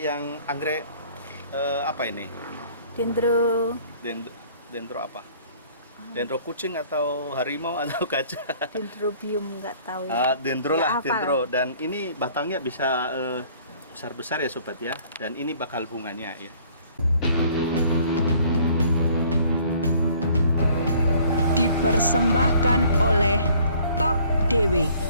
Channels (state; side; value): inverted; both; correlation -0.56